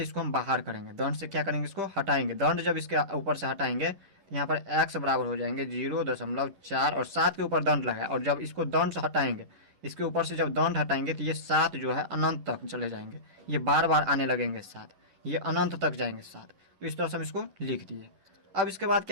इसको हम बाहर करेंगे, दंड से क्या करेंगे, इसको हटाएंगे। दंड जब इसके ऊपर से हटाएंगे तो यहाँ पर x बराबर हो जाएंगे 0.4 और 7 के ऊपर दंड लगाए। और जब इसको दंड से हटाएंगे, इसके ऊपर से जब दंड हटाएंगे तो ये 7 जो है अनंत तक चले जाएंगे, ये बार बार आने लगेंगे 7, ये अनंत तक जाएंगे 7। तो इस तरह से हम इसको लिख दिए। अब इसके बाद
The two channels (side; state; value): left; late; 11 ms